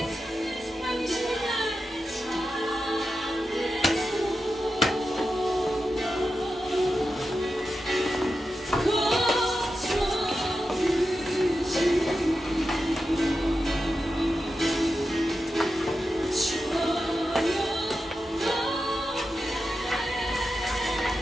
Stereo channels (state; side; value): normal; both; correlation 0.90